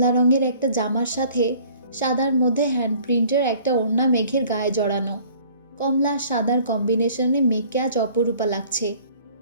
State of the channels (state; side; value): inverted; both; correlation -0.53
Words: রঙের একটা জামার সাথে সাদার মধ্যে হ্যান্ডপ্রিন্টের একটা ওড়না মেঘের গায়ে জড়ানো। কমলা সাদার কম্বিনেশনে মেঘকে আজ অপরূপা লাগছে।